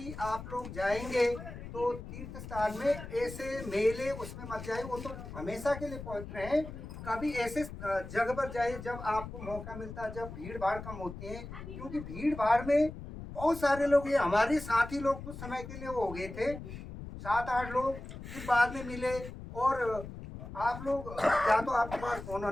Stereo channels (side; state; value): left; noise; rumble, 11 dB below the sound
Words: आप लोग जाएंगे तो तो तीर्थ स्थान में ऐसे मेले उसमें मत जाए, वो तो हमेशा के लिए पवित्र हैं। कभी ऐसे जगह पर जाए जब आपको मौका मिलता है, जब भीड़ भाड़ कम होती है, क्योंकि भीड़ भाड़ में बहुत सारे लोग, ये हमारे साथी लोग कुछ समय के लिए वो हो गए थे, 7-8 लोग, फिर बाद में मिले। और आप लोग, क्या तो आपके पास फोन